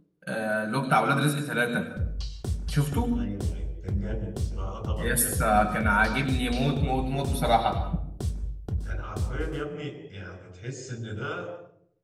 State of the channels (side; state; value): both; identical; correlation 1.00